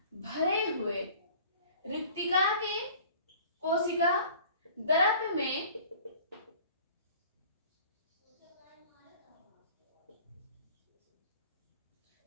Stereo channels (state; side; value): inverted; both; correlation -0.48